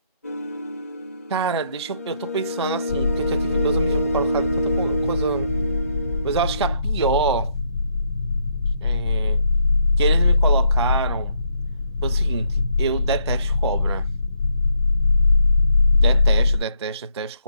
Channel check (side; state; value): both; inverted; correlation -0.73